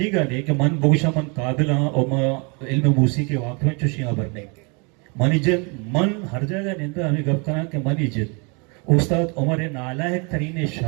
ने कि मन बोगशा मन काबिल और मैं इल्म मूसी के वाक़ में चुशियाँ भरने मन इज्जत मन हर जगह निंदा हमें गप करा कि मन इज्जत उस्ताद उमर नालायक तरीने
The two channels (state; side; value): quieter; left; 32.6 dB